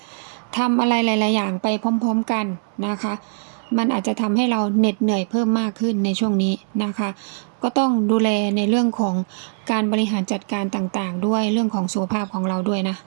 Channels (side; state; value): left; silent; 65 dB below the other